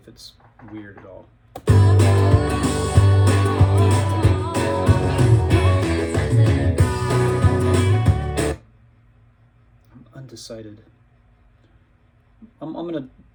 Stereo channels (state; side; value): identical; both; correlation 1.00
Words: it's weird at all. I'm undecided. I'm going to